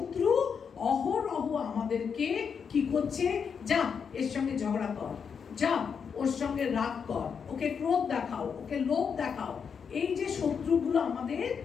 অহরহ আমাদেরকে কি করছে? যা এর সঙ্গে ঝগড়া কর, যা ওর সঙ্গে রাগ কর, ওকে ক্রোধ দেখাও, ওকে লোভ দেখাও। এই যে শত্রুগুলো আমাদের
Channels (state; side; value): quieter; right; 6.5 dB